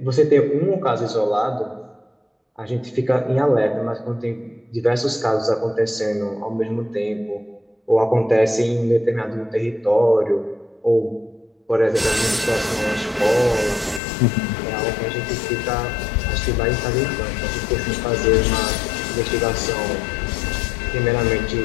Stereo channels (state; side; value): drops out; right; at 14.0 s